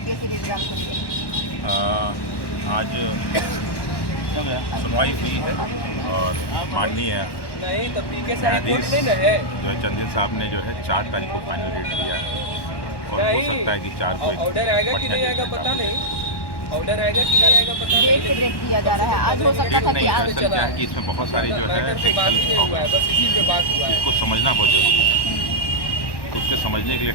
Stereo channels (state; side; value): late; right; 1.1 ms